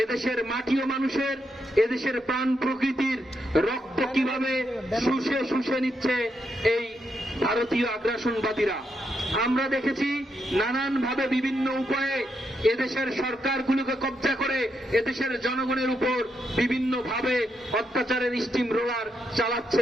এদেশের মাটি ও মানুষের, এদেশের প্রাণ প্রকৃতির রক্ত কিভাবে শুষে শুষে নিচ্ছে এই ভারতীয় আগ্রাসনবাদীরা। আমরা দেখেছি নানানভাবে বিভিন্ন উপায়ে এদেশের সরকারগুলোকে কব্জা করে এদেশের জনগণের উপর বিভিন্নভাবে অত্যাচারের স্টিম রোলার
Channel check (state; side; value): normal; both; correlation 0.81